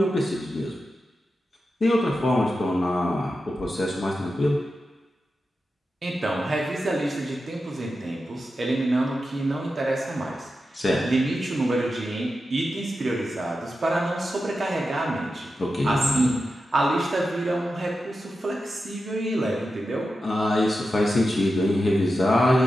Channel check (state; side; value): normal; both; correlation 0.91